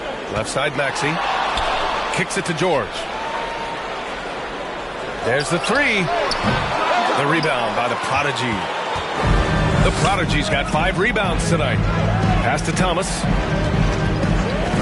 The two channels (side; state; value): both; identical; correlation 1.00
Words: Left side Maxey. Kicks it to George. There's the 3. The rebound by the prodigy. The Prodigy's got 5 rebounds tonight. Pass to Thomas.